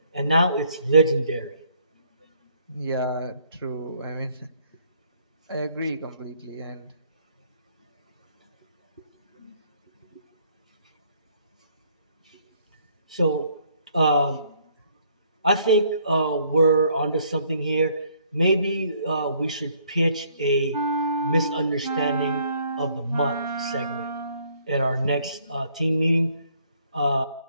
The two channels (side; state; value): both; inverted; correlation -0.65